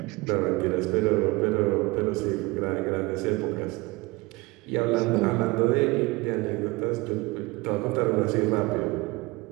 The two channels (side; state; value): left; quieter; 23.6 dB